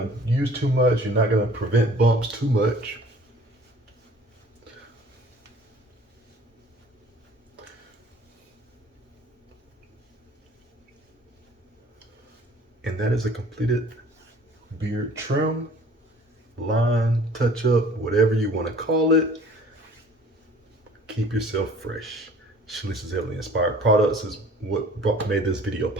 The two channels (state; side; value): normal; both; correlation 0.51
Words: use too much. You're not gonna prevent bumps too much. And that is a completed beard trim, line, touch up, whatever you want to call it. Keep yourself fresh. Chalises Heavenly Inspired products is what made this video